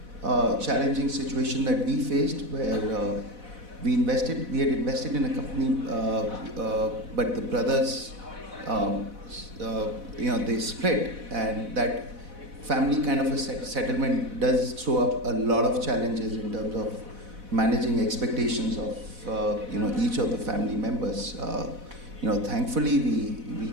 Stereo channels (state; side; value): late; left; 4.1 ms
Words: situation that we faced where we had invested in a company, but the brothers, they split, and that family kind of a settlement does throw up a lot of challenges in terms of managing expectations of each of the family members. Thankfully we